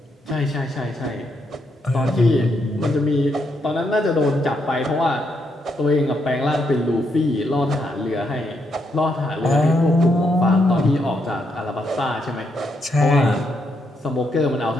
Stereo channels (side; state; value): both; normal; correlation 0.78